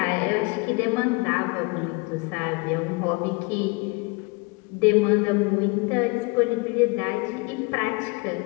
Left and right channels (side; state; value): right; quieter; 28.5 dB